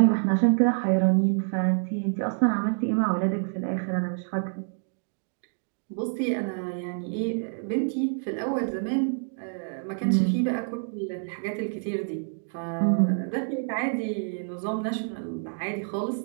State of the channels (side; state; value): left; silent; 57 dB below the other